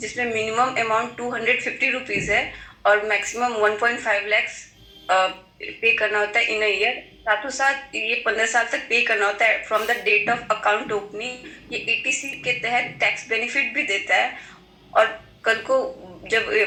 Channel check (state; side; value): identical; both; correlation 1.00